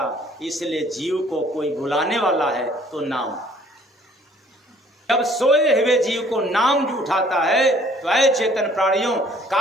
इसलिए जीव को कोई बुलाने वाला है तो नाम। जब सोए हुए जीव को नाम जो उठाता है तो ऐ चेतन प्राणियों,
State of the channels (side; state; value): both; normal; correlation 0.58